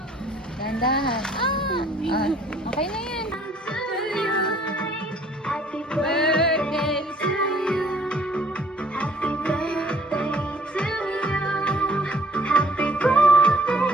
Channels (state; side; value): normal; both; correlation 0.58